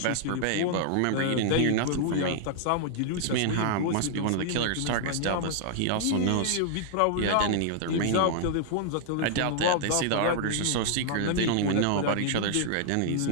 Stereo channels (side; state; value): both; different; correlation -0.01